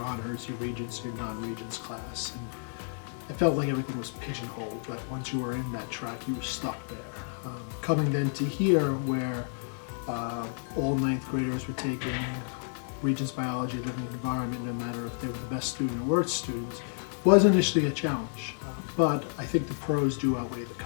your regents, your non-regents class. And I felt like everything was pigeonholed, but once you were in that track, you were stuck there. Coming then to here, where all ninth graders were taking Regents Biology, Living Environment, no matter if they were the best student or worst students, was initially a challenge. But I think the pros do outweigh the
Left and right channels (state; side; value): silent; right; 58 dB below the other